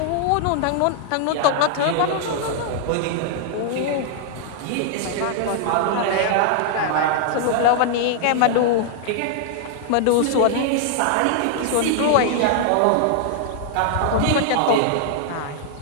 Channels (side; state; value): both; different; correlation 0.00